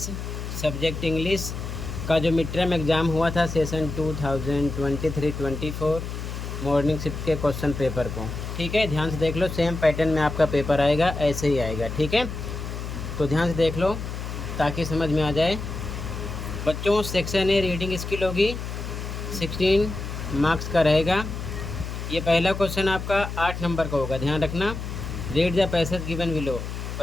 सब्जेक्ट इंग्लिश का जो मिड टर्म एग्ज़ाम हुआ था सेशन 2023-24 मॉर्निंग शिफ्ट के क्वेश्चन पेपर को। ठीक है, ध्यान से देख लो, सेम पैटर्न में आपका पेपर आएगा, ऐसे ही आएगा। ठीक है, तो ध्यान से देख लो ताकि समझ में आ जाए। बच्चों, सेक्शन ए रीडिंग स्किल होगी, 16 मार्क्स का रहेगा। ये पहला क्वेश्चन आपका 8 नंबर का होगा, ध्यान रखना। Read the passage given below,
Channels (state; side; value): noise; left; hum, 6 dB below the sound